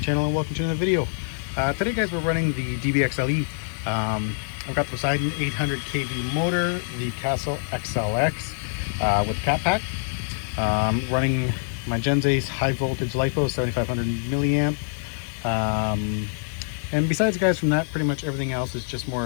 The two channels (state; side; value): silent; right; digital silence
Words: and welcome to another video. Today guys, we're running the DBXLE. I've got the Poseidon 800 kV motor, the Castle XLX with cat pack. Running my Gen Ace high voltage LiFo 7500 milliamp. And besides guys, from that, pretty much everything else is just more